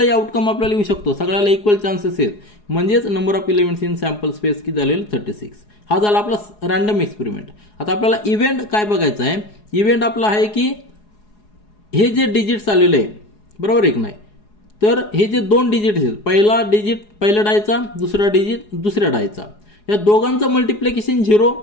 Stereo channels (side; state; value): right; late; 4.8 ms